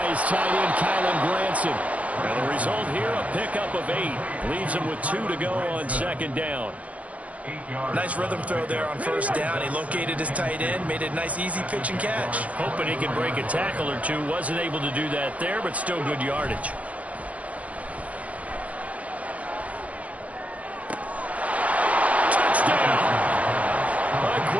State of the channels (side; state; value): left; late; 0.067 ms